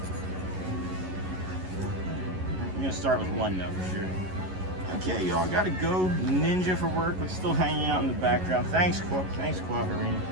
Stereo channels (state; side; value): late; left; 11 ms